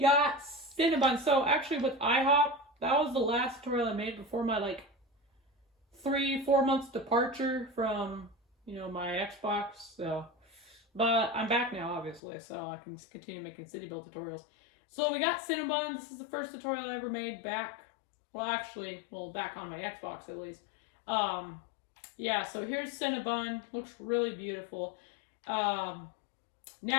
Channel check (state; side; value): drops out; right; at 12.2 s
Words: Cinnabon. So actually with IHOP, that was the last tutorial I made before my 3-4 months departure from my Xbox. So, but I'm back now, obviously, so I can continue making city build tutorials. So we got Cinnabon. This is the first tutorial I ever made back. Back on my Xbox at least. So here's Cinnabon. Looks really beautiful.